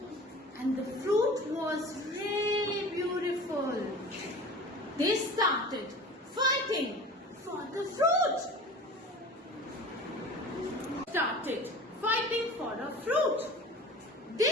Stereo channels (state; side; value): normal; both; correlation 0.39